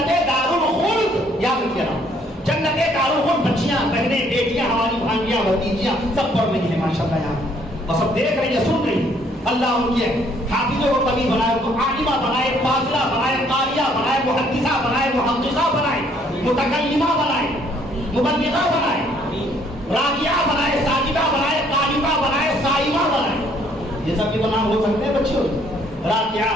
دارالخلد. یاد رکھیے نا، جنت دارالخلد. بچیاں، بہنیں، بیٹیاں، ہماری بھانجیاں، بھتیجیاں سب پڑھ رہی ہیں ماشاءاللہ یہاں، اور سب دیکھ رہی ہیں، سن رہی ہیں. اللہ ان کے حافظوں کو کبھی بنائے، ان کو عالمہ بنائے، فاضلہ بنائے، قاریہ بنائے، محدثہ بنائے، محققہ بنائے، متکلمہ بنائے، مبلغہ بنائے، راکعہ بنائے، ساجدہ بنائے، قانتہ بنائے، صائمہ بنائے. یہ سب کے نام ہو سکتے ہیں بچوں،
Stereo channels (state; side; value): normal; both; correlation 0.64